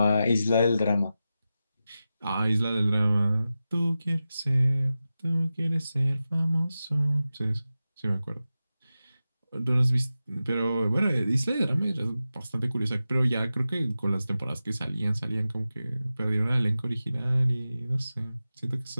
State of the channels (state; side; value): inverted; both; correlation -0.93